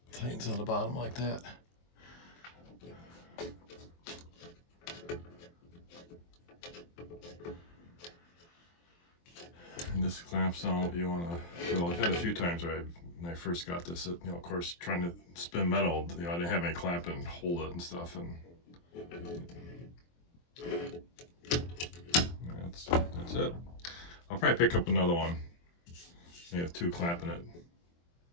tightens on the bottom like that. And this clamps down what you want to. I've had a few times where when I first got this, of course, trying to spin metal, I didn't have any clamp and hold it and stuff, and that's it. I'll probably pick up another one. You have 2 clamping it.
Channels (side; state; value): right; late; 23 ms